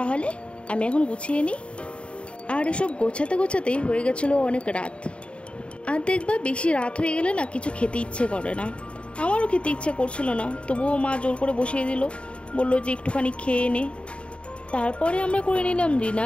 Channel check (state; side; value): late; right; 0.058 ms